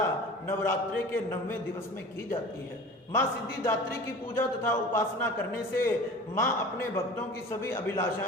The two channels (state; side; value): normal; both; correlation 0.40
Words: नवरात्रे के 9वें दिवस में की जाती है। मां सिद्धिदात्री की पूजा तथा उपासना करने से मां अपने भक्तों की सभी